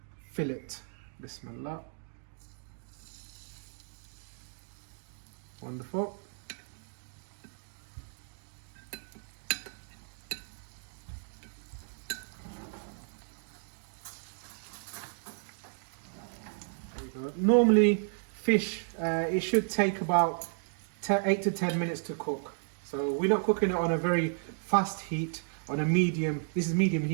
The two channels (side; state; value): left; silent; digital silence